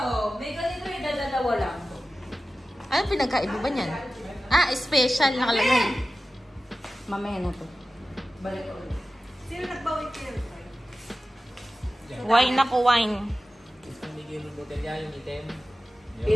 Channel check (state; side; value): normal; both; correlation 0.95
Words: May ganito yung dadalawa lang. Ano pinagkaiba ba niyan? Ah, special nakalagay. Mamaya na to. Balik ko ulit. Sino nagbawin kayo? Wine ako, wine. Isang bigay ng botelya yung item.